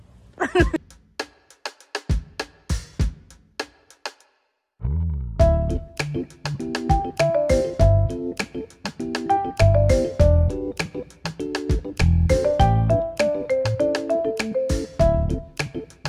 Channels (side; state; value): both; identical; correlation 1.00